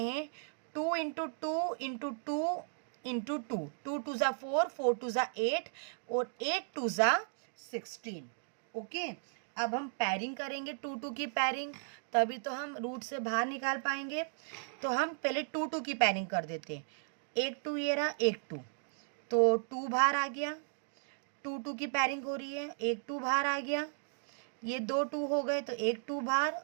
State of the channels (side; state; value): left; silent; digital silence